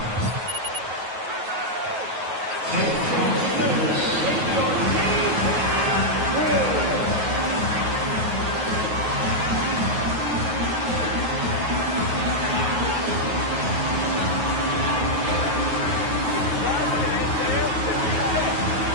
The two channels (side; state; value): left; late; 9.3 ms